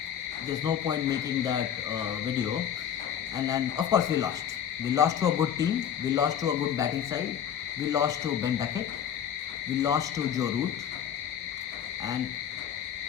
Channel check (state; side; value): quieter; right; 9.2 dB